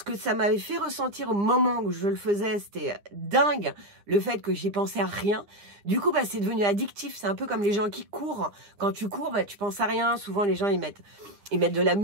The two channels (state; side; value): late; left; 9.9 ms